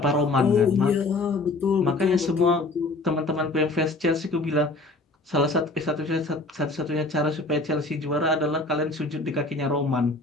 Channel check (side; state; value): right; quieter; 3.0 dB